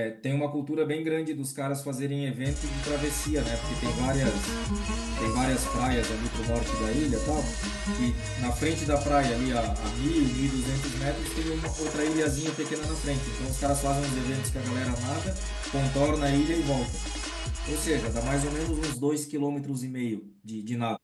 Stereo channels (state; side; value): identical; both; correlation 1.00